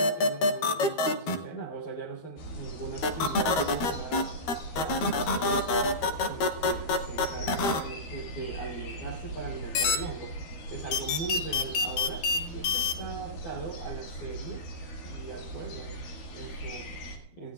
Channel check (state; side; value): late; right; 12 ms